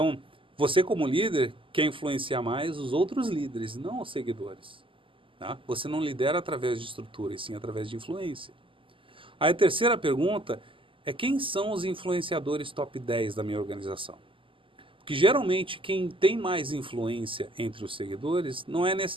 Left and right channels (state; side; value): late; left; 0.25 ms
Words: você como líder quer influenciar mais os outros líderes, não os seguidores. Tá? Você não lidera através de estrutura, e sim através de influência. Aí a terceira pergunta é: quem são os influenciadores top 10 da minha organização? Porque geralmente quem tem mais influência entre os seguidores não é